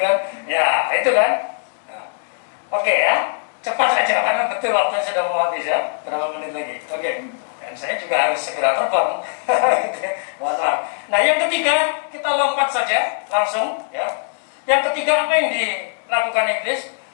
kan. Ya, itu kan. Nah, oke ya. Cepat saja karena betul waktunya sudah mau habis ya. Berapa menit lagi? Oke. Dan saya juga harus segera terbang. Maaf. Nah, yang ketiga kita lompat saja langsung ya. Yang ketiga apa yang lakukan iblis?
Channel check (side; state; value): right; silent; digital silence